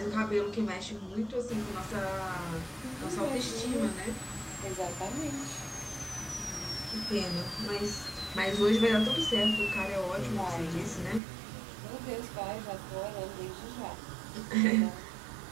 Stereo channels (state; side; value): drops out; left; at 11.2 s